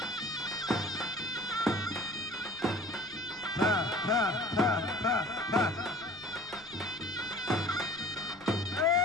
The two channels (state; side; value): noise; left; rumble, 25 dB below the sound